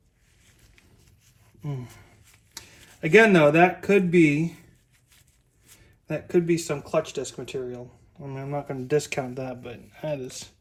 Again though, that could be some clutch disc material. I mean, I'm not going to discount that, but that is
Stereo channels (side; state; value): both; identical; correlation 1.00